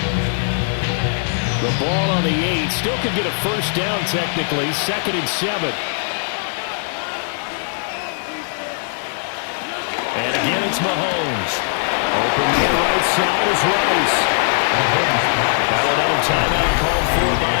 The ball on the 8. Still could get a first down technically. 2nd and 7. And again it's Mahomes. Open to the right side is Rice. Now another timeout called for by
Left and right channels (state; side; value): silent; right; digital silence